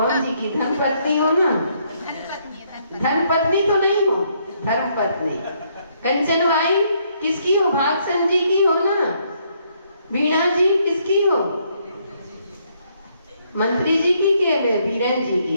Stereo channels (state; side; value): inverted; both; correlation -0.71